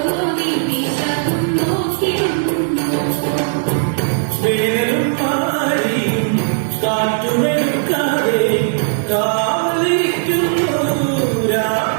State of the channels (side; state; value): left; silent; digital silence